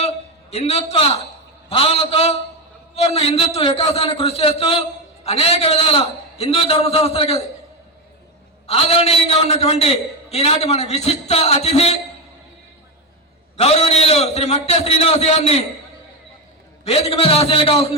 హిందుత్వ భావనతో సంపూర్ణ హిందుత్వ వికాసాన్ని కృషి చేస్తూ అనేక విధాల హిందూ ధర్మ సంస్థలకు ఆదరణీయంగా ఉన్నటువంటి ఈనాటి మన విశిష్ట అతిథి గౌరవనీయులు శ్రీ మట్టె శ్రీనివాస్ గారిని వేదిక మీద ఆశీర్లు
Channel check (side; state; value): both; normal; correlation 0.12